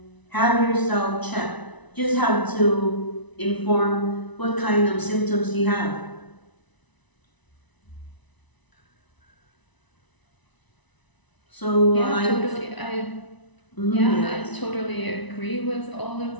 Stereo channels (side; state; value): right; late; 1.0 ms